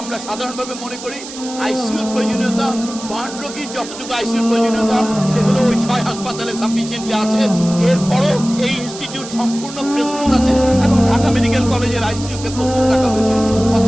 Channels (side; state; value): right; noise; hiss, 13 dB below the sound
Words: আমরা সাধারণভাবে মনে করি আইসিইউর প্রয়োজনীয়তা, বার্ন রোগীর যতটুকু আইসিইউর প্রয়োজনীয়তা সেগুলো ওই 6 হাসপাতালে সাফিসিয়েন্টলি আছে। এরপরও এই ইনস্টিটিউট সম্পূর্ণ প্রস্তুত আছে এবং ঢাকা মেডিকেল কলেজের আইসিইউকে প্রস্তুত রাখা হয়েছে।